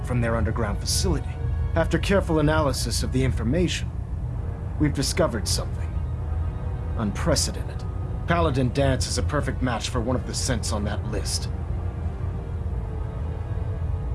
from their underground facility. After careful analysis of the information, we've discovered something unprecedented. Paladin Dance is a perfect match for one of the synths on that list.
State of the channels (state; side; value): identical; both; correlation 1.00